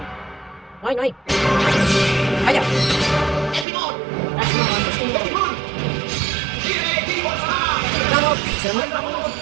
No hay, no hay. Vaya. Vamos. Se muere.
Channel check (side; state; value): left; drops out; at 3.7 s